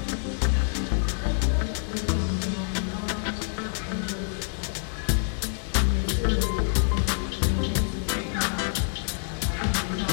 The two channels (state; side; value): silent; right; digital silence